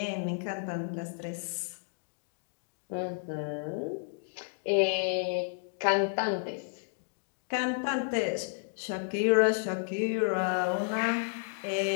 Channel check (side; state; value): right; silent; digital silence